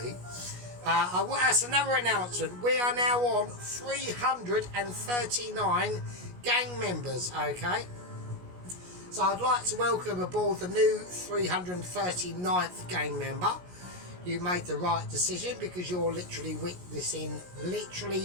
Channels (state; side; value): late; left; 17 ms